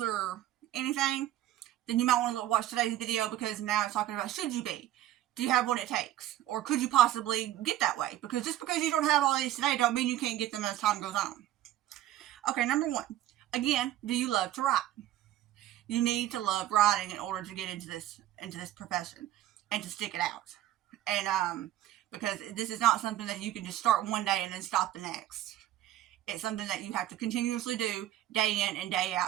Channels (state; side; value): quieter; left; 13.2 dB